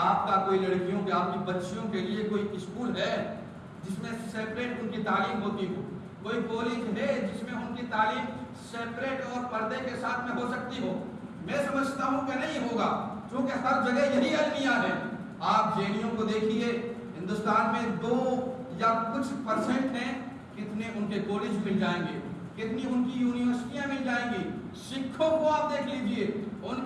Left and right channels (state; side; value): identical; both; correlation 1.00